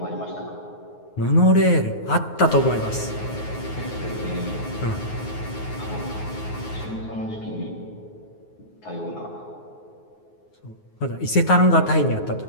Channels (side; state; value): right; late; 9.5 ms